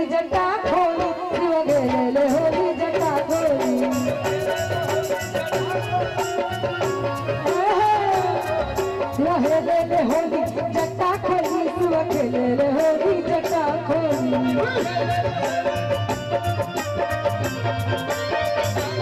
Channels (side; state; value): both; identical; correlation 1.00